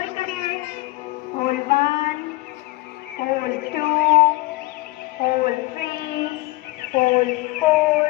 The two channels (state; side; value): quieter; right; 21.5 dB